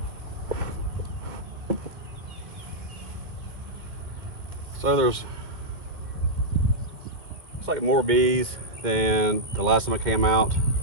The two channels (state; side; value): late; left; 2.1 ms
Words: So there's, it's like more bees than the last time I came out.